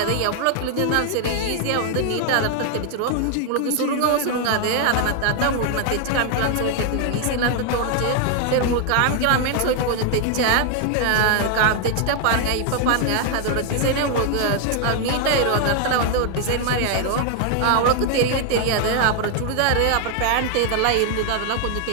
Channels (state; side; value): different; both; correlation 0.00